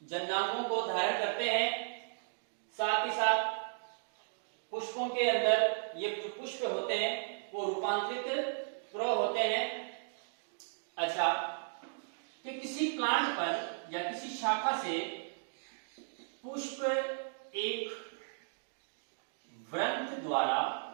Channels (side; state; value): left; silent; digital silence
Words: जननांगों को धारण करते हैं। साथ ही साथ पुष्पों के अंदर ये जो पुष्प होते हैं वो रूपांतरित प्रो होते हैं। अच्छा, कि किसी प्लांट पर या किसी शाखा से पुष्प एक व्रंत द्वारा